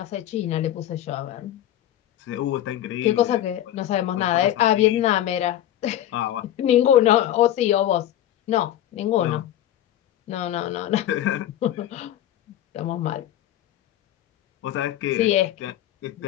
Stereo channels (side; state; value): right; quieter; 12.3 dB